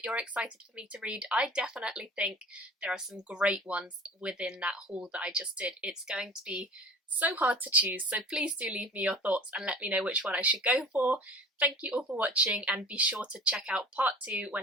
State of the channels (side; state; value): both; normal; correlation 0.40